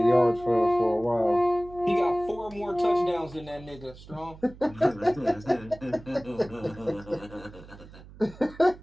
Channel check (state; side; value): noise; right; hum, 19 dB below the sound